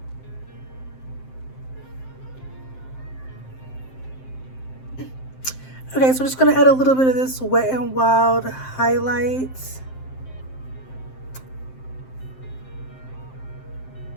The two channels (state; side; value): late; right; 7.7 ms